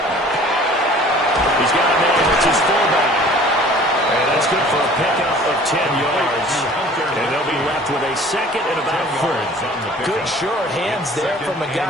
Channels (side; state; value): both; normal; correlation 0.49